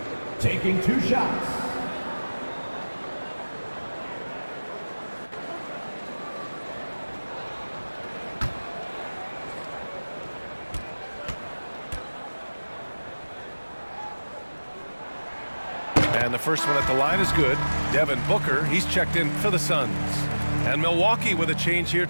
taking 2 shots. And the first one at the line is good. Devin Booker, he's checked in for the Suns. And Milwaukee with a change here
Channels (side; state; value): both; inverted; correlation -1.00